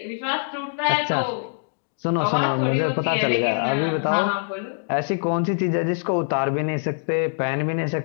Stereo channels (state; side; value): silent; right; digital silence